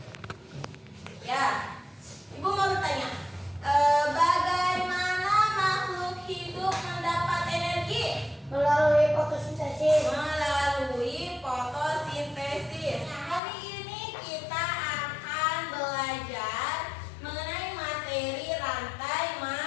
Ya, Ibu mau bertanya, bagaimana makhluk hidup mendapat energi? Melalui fotosintesis. Melalui fotosintesis. Hari ini kita akan belajar mengenai materi rantai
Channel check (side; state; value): right; drops out; at 13.4 s